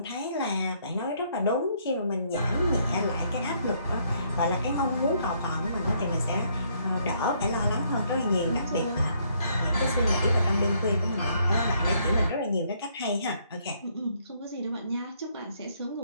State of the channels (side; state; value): both; inverted; correlation -0.69